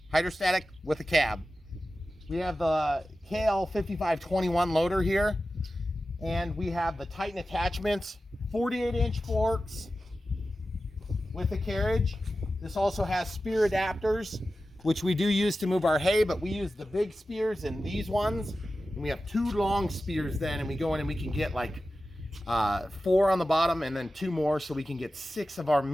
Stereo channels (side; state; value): both; normal; correlation 0.94